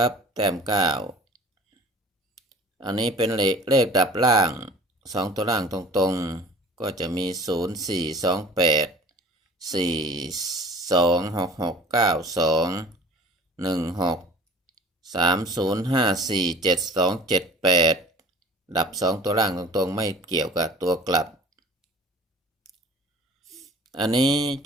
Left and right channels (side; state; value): both; normal; correlation 0.46